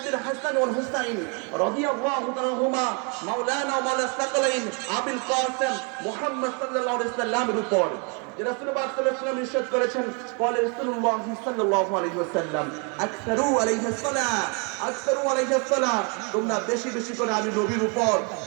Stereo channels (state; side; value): quieter; left; 35.0 dB